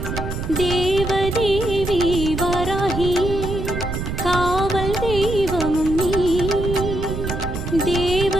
தேவதேவி வராகியே காவல் தெய்வமும் நீ.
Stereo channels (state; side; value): noise; right; rumble, 5 dB below the sound